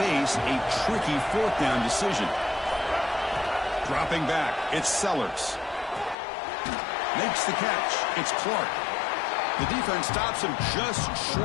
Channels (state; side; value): drops out; right; at 6.2 s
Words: a tricky fourth down decision? Dropping back, it's Sellers. Makes the catch. It's Clark. The defense stops him just